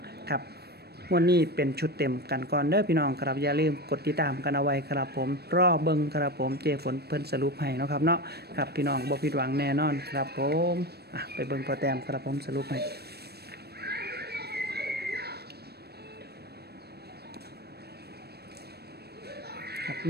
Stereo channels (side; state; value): left; late; 0.47 ms